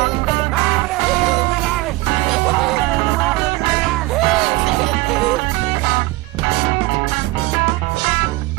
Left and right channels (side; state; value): left; quieter; 20.9 dB